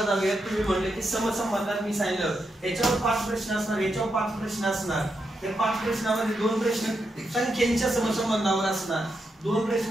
जाऊया. तुम्ही म्हणले की समसंबंधात मी सांगितलं याच्यावर 5 प्रश्न असणार, याच्यावर 5 प्रश्न असणार. त्या 5 प्रश्नामध्ये 2 प्रश्न संख्येच्या समसंबंधावर असणार, 2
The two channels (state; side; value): normal; both; correlation 0.84